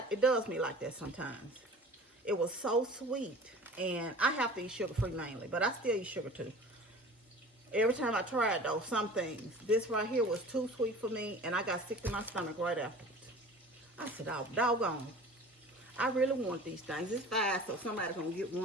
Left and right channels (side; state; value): both; normal; correlation 0.42